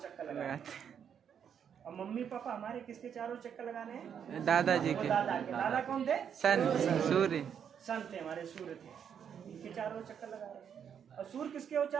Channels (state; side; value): quieter; left; 8.1 dB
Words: लगा रहे हैं। और मम्मी पापा हमारे किसके चारों चक्कर लगाने हैं? दादाजी वो के। दादा के। दादा कौन थे? सन, सूर्य। सन थे, हमारे सूर्य थे, इनके चारों ओर चक्कर लगा रहे हैं। और सूर्य किसके ओर